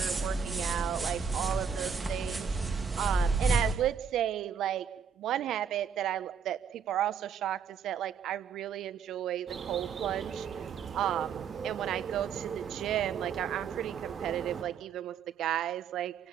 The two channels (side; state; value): left; quieter; 6.9 dB